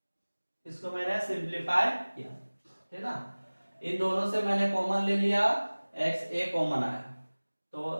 इसको मैंने सिंप्लीफाई किया, है ना। इन दोनों से मैंने कॉमन ले लिया, एक्स ए कॉमन आया,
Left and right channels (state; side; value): inverted; both; correlation -1.00